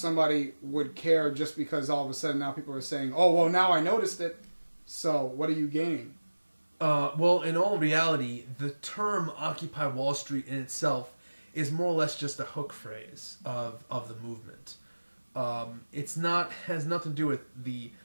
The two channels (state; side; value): inverted; both; correlation -1.00